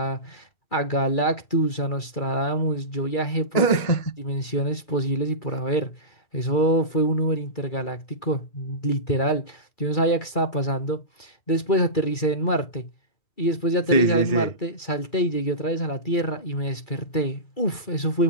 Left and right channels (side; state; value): right; late; 2.3 ms